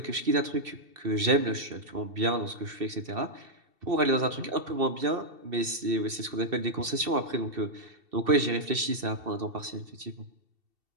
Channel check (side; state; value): left; late; 2.7 ms